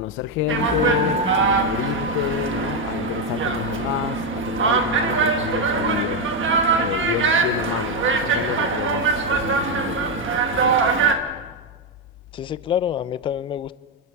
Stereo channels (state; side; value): normal; both; correlation 0.05